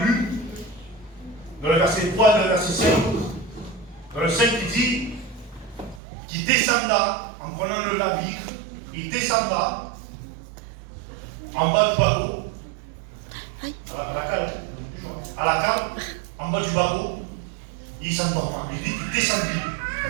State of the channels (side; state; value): left; drops out; at 6.0 s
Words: dans le verset 3 et le verset 5, dans le 5 il dit qu'il descendra en prenant le navire, il descendra en bas du bateau, à la cale, en bas du bateau, il s'endorma. Il dit qu'il descendit.